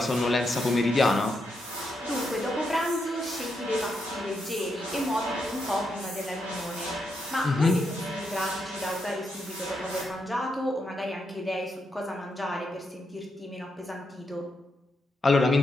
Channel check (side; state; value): both; normal; correlation 0.82